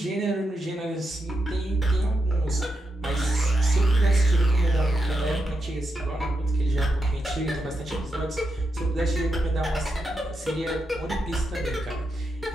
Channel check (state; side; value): normal; both; correlation 0.85